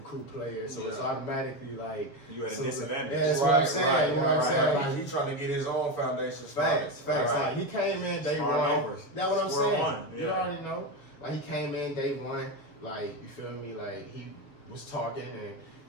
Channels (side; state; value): right; late; 7.0 ms